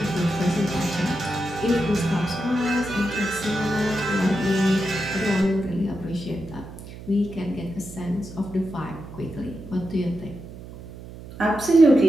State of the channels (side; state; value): right; noise; hum, 14 dB below the sound